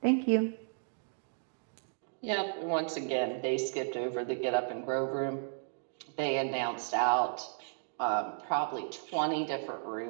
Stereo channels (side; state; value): left; silent; digital silence